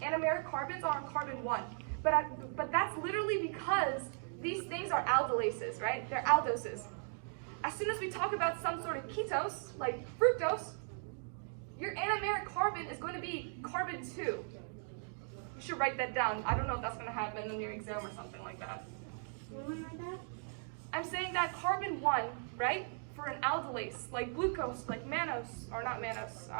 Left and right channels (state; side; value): silent; left; 53 dB below the other